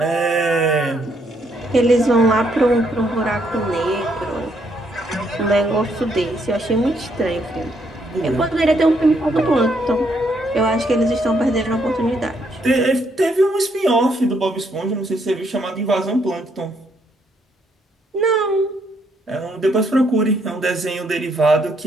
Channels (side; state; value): both; normal; correlation 0.72